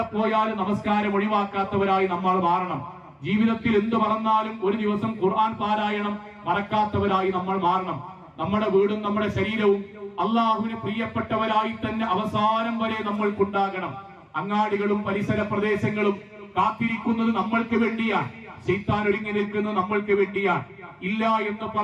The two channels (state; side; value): identical; both; correlation 1.00